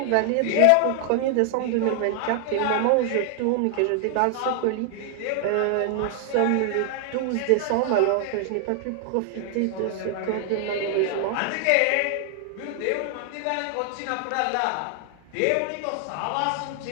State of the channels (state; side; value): different; both; correlation 0.00